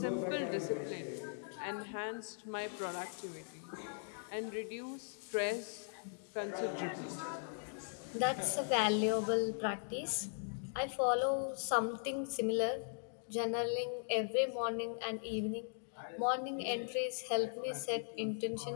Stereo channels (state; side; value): silent; right; digital silence